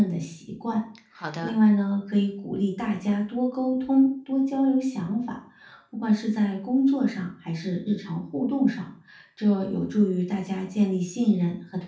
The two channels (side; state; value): both; identical; correlation 1.00